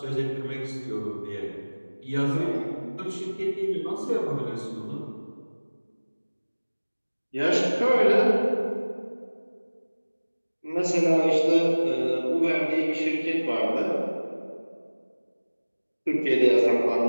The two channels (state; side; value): inverted; both; correlation -1.00